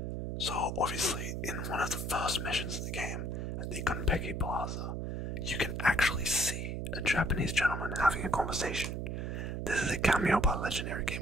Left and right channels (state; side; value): noise; right; hum, 3 dB below the sound